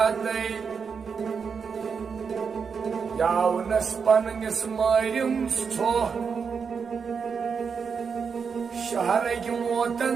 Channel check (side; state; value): left; quieter; 6.0 dB